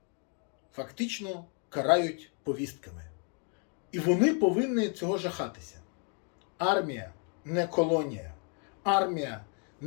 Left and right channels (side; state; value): right; quieter; 40.0 dB